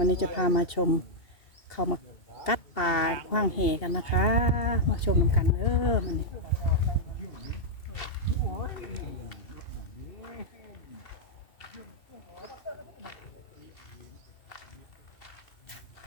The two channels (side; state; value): right; late; 2.7 ms